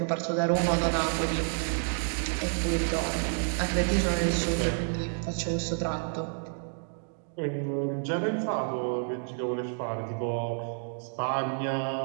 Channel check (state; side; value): silent; left; digital silence